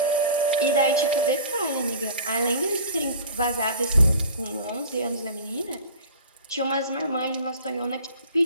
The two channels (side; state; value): both; inverted; correlation -0.41